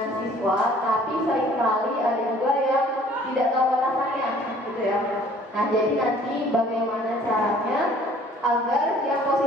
siswa, tapi seringkali ada juga yang tidak tahu batasannya, gitu ya. Nah jadi nanti bagaimana caranya agar yang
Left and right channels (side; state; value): both; normal; correlation 0.55